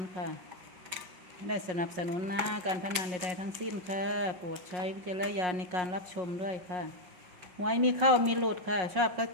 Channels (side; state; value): left; late; 5.5 ms